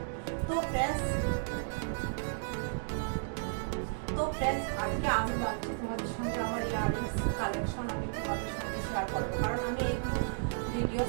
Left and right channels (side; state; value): left; silent; digital silence